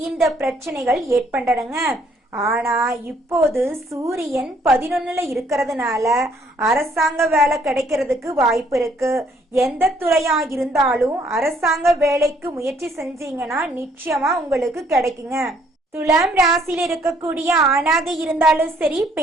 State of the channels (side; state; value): both; normal; correlation 0.65